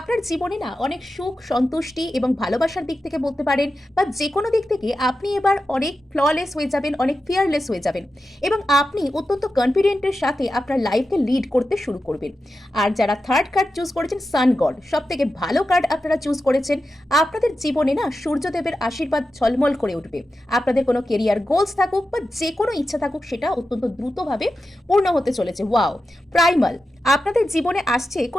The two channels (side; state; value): both; normal; correlation 0.91